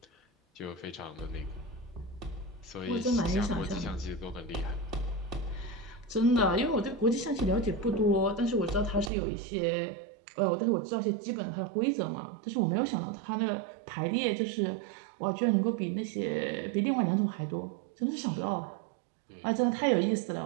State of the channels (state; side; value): drops out; left; at 9.1 s